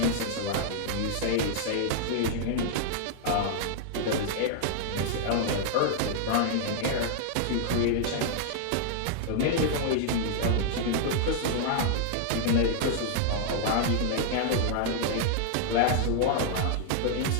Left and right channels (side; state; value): both; different; correlation -0.01